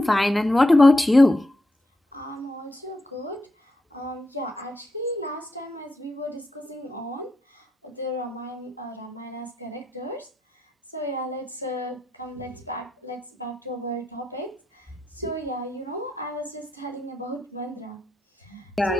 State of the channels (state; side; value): normal; both; correlation 0.84